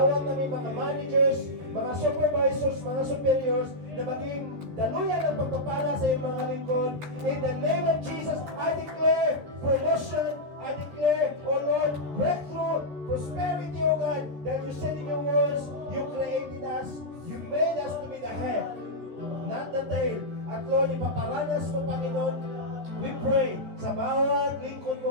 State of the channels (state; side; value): late; left; 14 ms